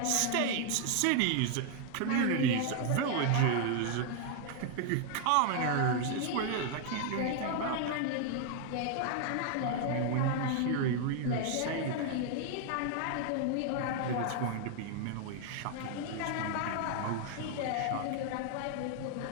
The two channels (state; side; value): different; both; correlation 0.00